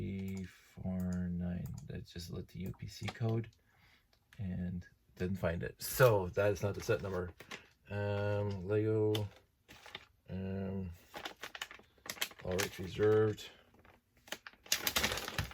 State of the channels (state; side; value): identical; both; correlation 1.00